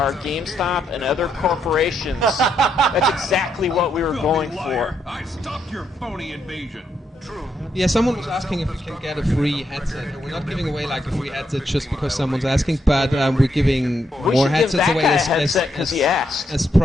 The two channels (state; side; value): normal; both; correlation 0.78